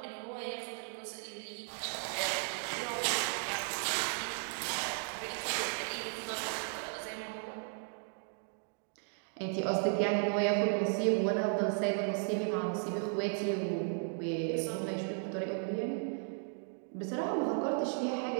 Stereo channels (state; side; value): silent; left; 54 dB below the other